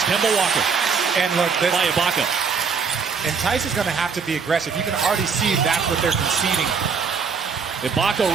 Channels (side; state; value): left; quieter; 5.6 dB